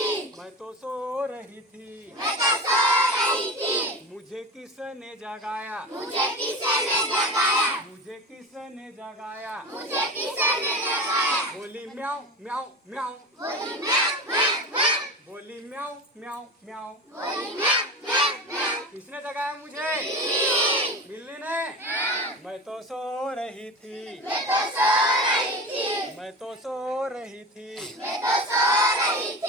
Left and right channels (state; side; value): normal; both; correlation 0.28